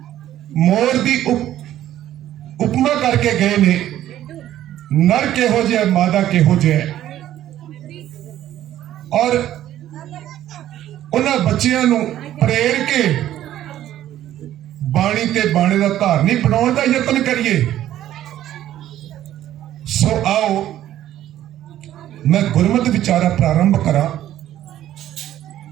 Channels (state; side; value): quieter; left; 12.5 dB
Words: मोर दी उपमा करके गए ने। नर किहो जिहा, मादा किहो जिहा, और उन्हां बच्चियां नूं प्रेर के बाणी ते बाणे दा धारनी बनाउण दा यतन करिए। सो आओ मैं गुरमत विचारा प्रारंभ करा।